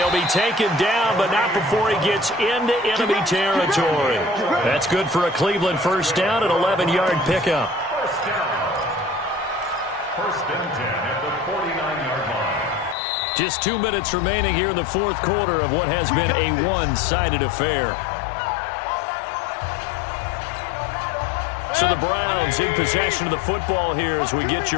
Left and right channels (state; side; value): drops out; right; at 13.0 s